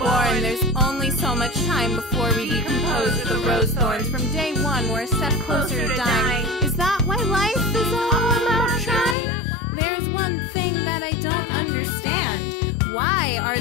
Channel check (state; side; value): drops out; right; at 9.2 s